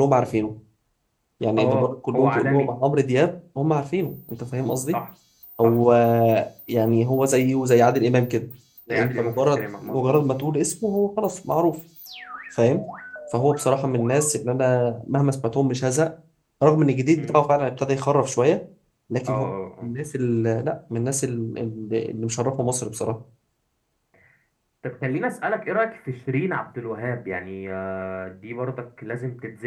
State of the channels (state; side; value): identical; both; correlation 1.00